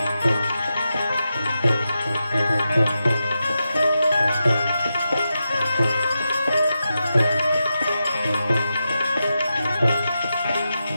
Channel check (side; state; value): both; inverted; correlation -0.89